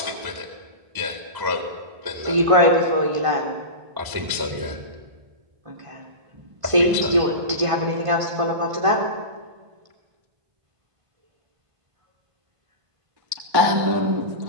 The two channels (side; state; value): left; late; 1.5 ms